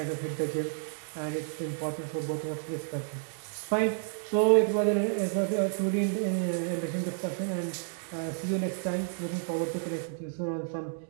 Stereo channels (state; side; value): silent; left; digital silence